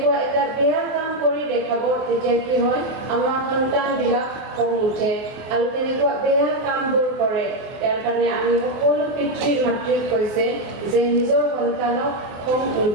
এটা বেয়া কাম কৰি দেখাব তেতিয়া কি হয় আমাৰ সন্তানবিলাক খং উঠে আৰু তেনেকুৱা বেয়া কামবোৰ কৰে ইয়াৰ কাৰণে আমি সকলো পিতৃ মাতৃক কৈছে যে নিজৰ সন্তানক খং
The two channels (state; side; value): late; left; 24 ms